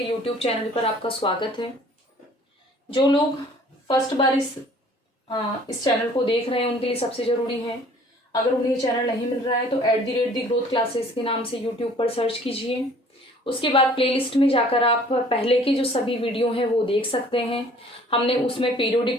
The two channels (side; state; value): both; normal; correlation 0.53